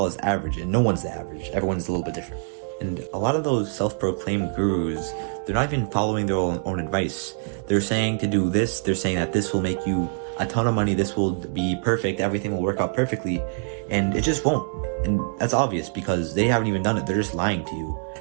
is average and no one's the average. Everyone's a little bit different. And a lot of those self-proclaimed gurus, they're not even following their own advice. They're saying to do this. They're saying that this will make you a ton of money, this will be perfect, everything will work out perfectly, and it just won't. And that's obvious because they haven't even done it. They're just lying to you.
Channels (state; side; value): silent; left; digital silence